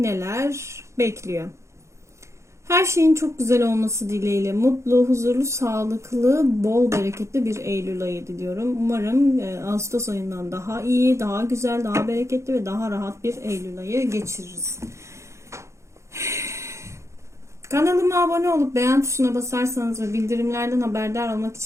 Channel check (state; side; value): late; left; 0.14 ms